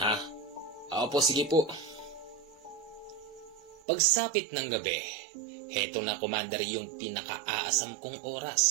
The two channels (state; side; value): drops out; left; at 3.8 s